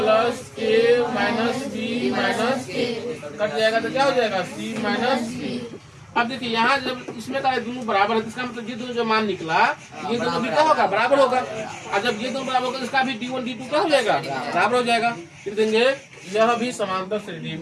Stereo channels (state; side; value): identical; both; correlation 1.00